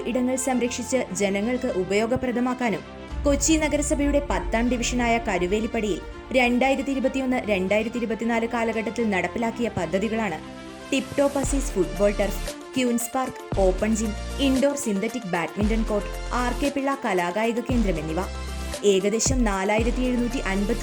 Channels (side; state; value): both; identical; correlation 1.00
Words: ഇടങ്ങൾ സംരക്ഷിച്ച് ജനങ്ങൾക്ക് ഉപയോഗപ്രദമാക്കാനും കൊച്ചി നഗരസഭയുടെ 10ാം ഡിവിഷനായ കരുവേലിപ്പടിയിൽ 2021-2024 കാലഘട്ടത്തിൽ നടപ്പിലാക്കിയ പദ്ധതികളാണ് tip top Aziz football turf, queens park, open gym, indoor synthetic badminton court, R K. Pillai കലാകായിക കേന്ദ്രം എന്നിവ. ഏകദേശം